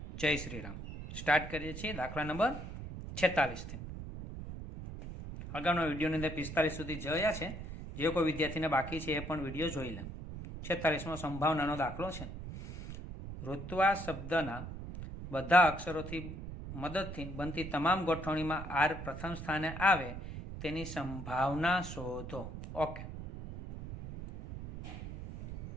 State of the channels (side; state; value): right; noise; rumble, 9 dB below the sound